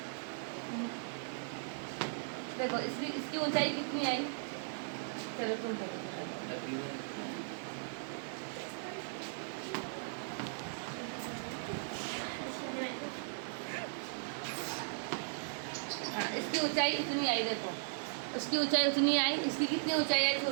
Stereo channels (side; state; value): left; silent; digital silence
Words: देखो इसकी ऊंचाई कितनी आई? चलो तुम देखो। हाँ, इसकी ऊंचाई इतनी आई। देखो उसकी ऊंचाई उतनी आई, इसकी कितनी ऊंचाई आई?